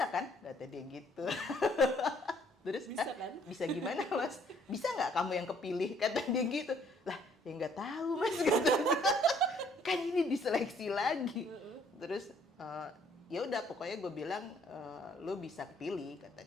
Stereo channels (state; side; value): normal; both; correlation 0.63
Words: kan? Kata dia gitu. Terus Bisa kan? Bisa gimana Mas? Bisa nggak kamu yang kepilih? Kata dia gitu. Lah ya nggak tahu Mas kata dia. Kan ini diseleksi lagi. Terus ya udah pokoknya gue bilang lu bisa kepilih kata